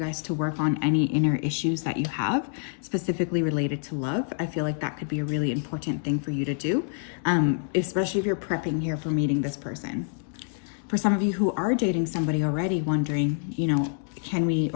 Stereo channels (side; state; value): right; silent; digital silence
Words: to work on any inner issues that you have, specifically related to love. I feel like that could be a really important thing for you to do, especially if you're prepping here for meeting this person. For some of you who are dating somebody already, wondering, you know, can we